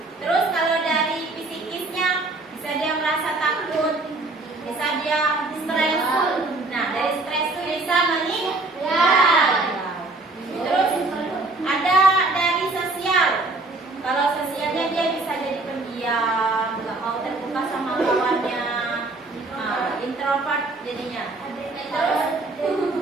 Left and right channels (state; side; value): quieter; left; 3.1 dB